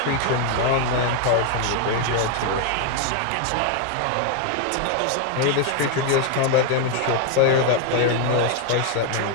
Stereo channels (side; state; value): both; different; correlation 0.01